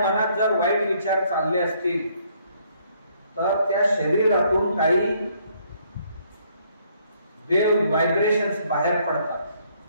जर वाईट विचार चालले असतील तर त्या शरीरातून काही वेव्ह व्हायब्रेशन्स बाहेर पडतात,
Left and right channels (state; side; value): inverted; both; correlation -0.67